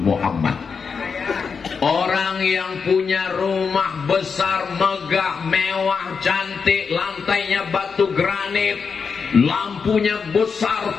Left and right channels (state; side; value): quieter; right; 5.6 dB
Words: Orang yang punya rumah besar, megah, mewah, cantik, lantainya batu granit, lampunya besar